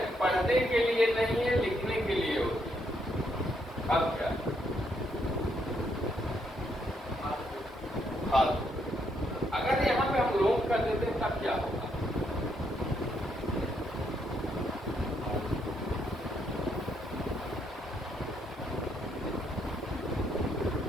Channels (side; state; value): both; normal; correlation 0.75